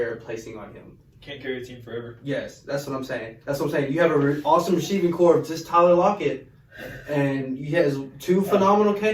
placing on him. Can't carry a team forever. Yes, that's what I'm saying. That's what I'm saying. You have an awesome receiving core of just Tyler Lockett, and he has 2 phenomenal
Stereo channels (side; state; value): both; identical; correlation 1.00